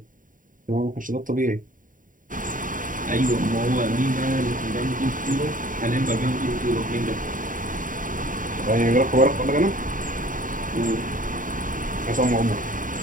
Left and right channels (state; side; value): late; left; 0.39 ms